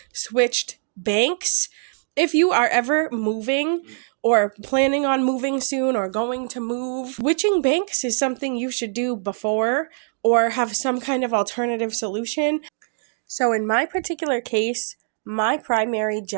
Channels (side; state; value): left; silent; digital silence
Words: switched banks. If you are ever moving or planning on moving soon or going to move, switching banks is something you should do before or have some kind of alternative solution. So in my particular case, my primary